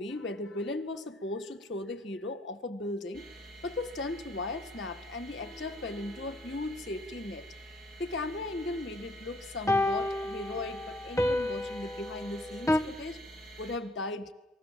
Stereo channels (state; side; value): normal; both; correlation 0.63